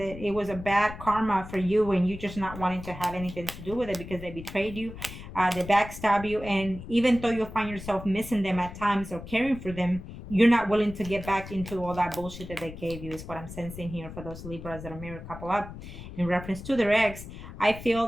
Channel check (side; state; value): left; noise; rumble, 12 dB below the sound